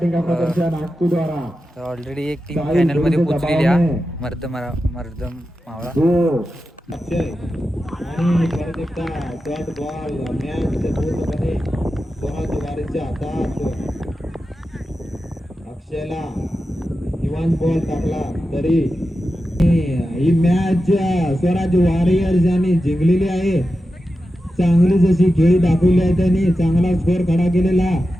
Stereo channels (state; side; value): normal; both; correlation 0.91